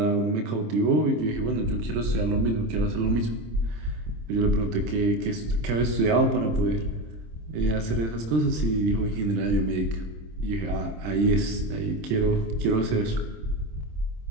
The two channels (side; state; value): left; late; 26 ms